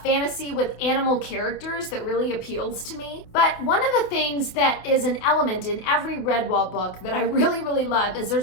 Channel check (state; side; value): late; right; 28 ms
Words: fantasy with animal characters that really appeals to me. But one of the things that is an element in every Redwall book that I really, really love is